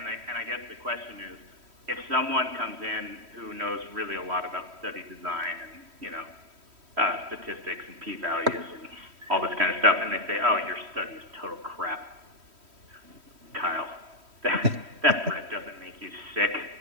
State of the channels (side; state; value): left; late; 3.1 ms